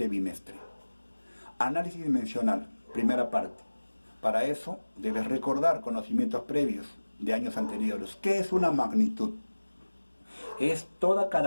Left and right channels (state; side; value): inverted; both; correlation -1.00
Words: bimestre. Análisis dimensional, primera parte. Para eso debes recordar conocimientos previos de años anteriores. ¿Qué es una magnitud? Es toda